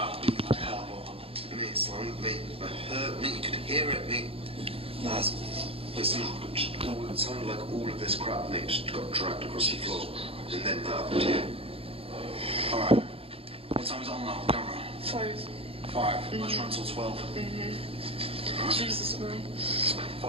beating like hell, bro. Mate, son, mate, it hurt, mate. You could hear it, mate. That's. Listen, it sounded like all of this crap, mate, just got dragged across the floor, and then that. Yeah. All right. What time is it on now? Camera. 5. Let's run till 12. Jesus, man.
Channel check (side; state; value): left; late; 0.27 ms